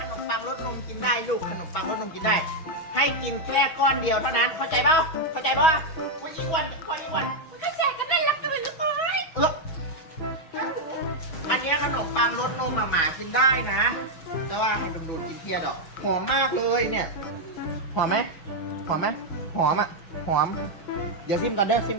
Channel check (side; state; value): right; late; 6.1 ms